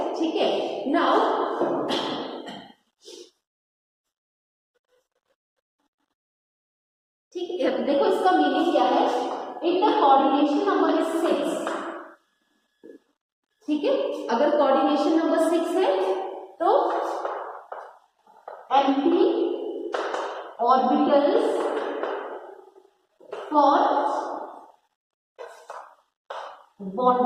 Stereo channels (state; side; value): identical; both; correlation 1.00